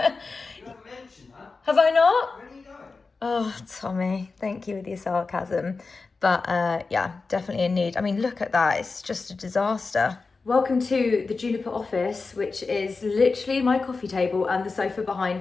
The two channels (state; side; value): quieter; right; 4.2 dB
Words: You haven't mentioned that. Have I not? Where are you going? Oh, Tommy, thank you with your sarcasm. But yeah, definitely in need. I mean, look at that. It's just a disaster. Welcome to the Juniper office, which is literally my coffee table and the sofa